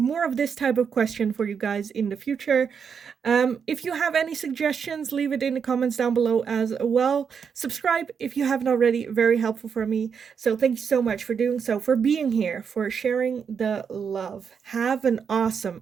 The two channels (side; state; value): left; quieter; 6.7 dB